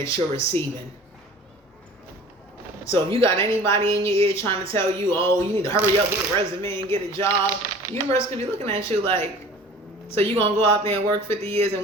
you're receiving. So if you got anybody in your ear trying to tell you, oh, you need to hurry up, get a resume and get a job, the universe could be looking at you like, so you gonna go out there and work 50 years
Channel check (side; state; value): both; normal; correlation 0.44